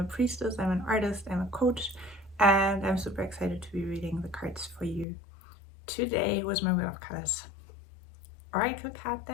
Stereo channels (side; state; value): right; drops out; at 5.1 s